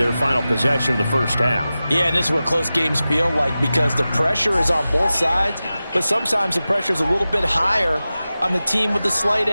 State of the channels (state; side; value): inverted; both; correlation -0.95